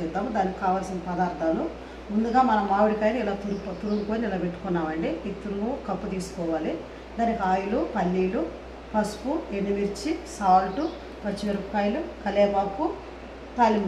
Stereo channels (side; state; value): both; identical; correlation 1.00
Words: దానికి కావాల్సిన పదార్థాలు ముందుగా మనం మామిడికాయని ఇలా తురుముకొని ఇలా పెట్టుకున్నామండి. ఈ తురుము కప్పు తీసుకోవాలి. దానికి ఆయిల్, పల్లీలు, పసుపు, ఎండుమిర్చి, సాల్ట్, పచ్చిమిరపకాయలు, కరివేపాకు,